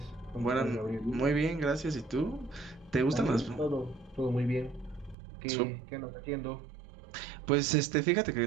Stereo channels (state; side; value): drops out; left; at 5.2 s